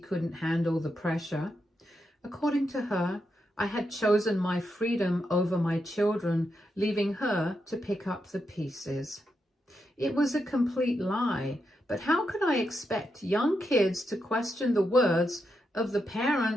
handle the pressure. According to her, I had chosen my freedom over my children, leaving her to pick up the pieces. It was a complete lie, but how could I expect young kids to question the words of the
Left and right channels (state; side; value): normal; both; correlation 0.84